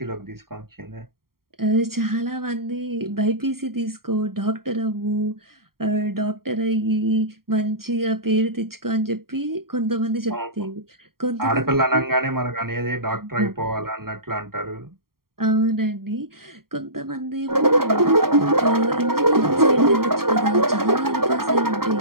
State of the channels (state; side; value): late; left; 0.93 ms